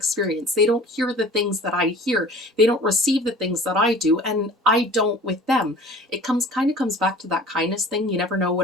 They don't hear the things that I hear. They don't receive the things that I do, and I don't with them. It comes back to that kindness thing. You never know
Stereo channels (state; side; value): normal; both; correlation 0.44